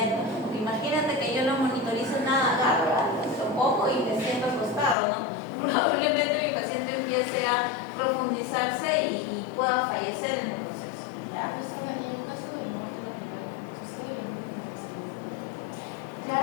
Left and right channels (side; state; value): right; drops out; at 5.0 s